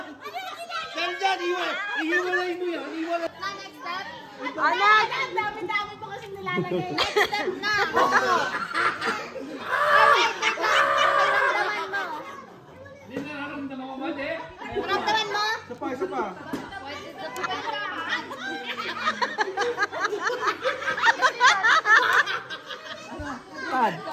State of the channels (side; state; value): both; identical; correlation 1.00